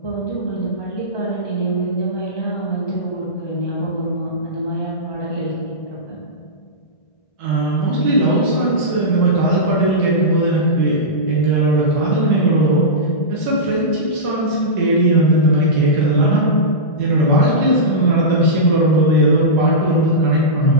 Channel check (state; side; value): late; right; 1.6 ms